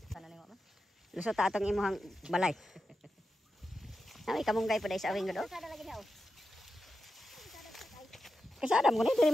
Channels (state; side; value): normal; both; correlation 0.90